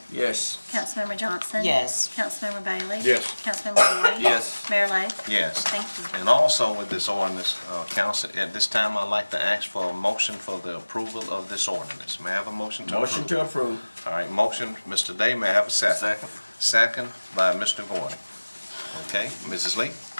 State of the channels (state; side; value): inverted; both; correlation -1.00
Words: Yes. Councilmember Johnson? Yes. Councilmember Bailey? Yes. Councilmember Gordy? Yes. Mayor Lo? Yes. Thank you. And also with this ordinance, council, at this time, I'd like to ask for a motion for the approval of this ordinance. May I have a motion to approve? Motion to approve. All right, motion, Mr. Day, may I have a second? Second. Second by Mr. Gordon. Okay, Mrs. Lee?